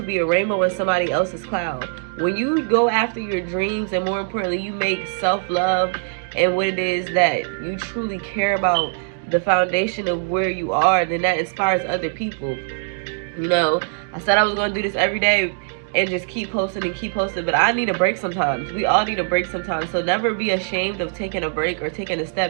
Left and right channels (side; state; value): left; silent; 64 dB below the other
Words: be a rainbow in somebody else's cloud. When you go after your dreams, and more importantly, you make self-love and what it is that you truly care about, the foundation of where you are, then that inspires other people. You know, I said I was going to do this every day and just keep posting, but I need a break sometimes. We all need a break sometimes. So never be ashamed of taking a break or taking a